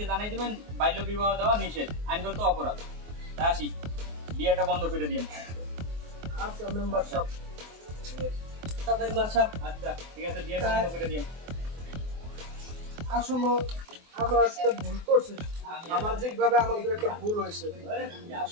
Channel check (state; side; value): late; left; 24 ms